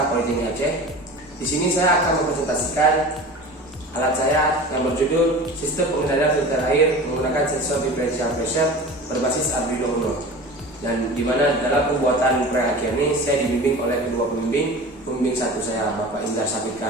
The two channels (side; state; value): both; normal; correlation 0.36